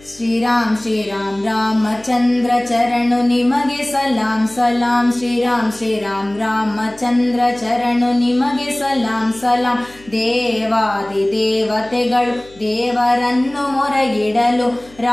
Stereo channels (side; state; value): left; noise; hum, 25 dB below the sound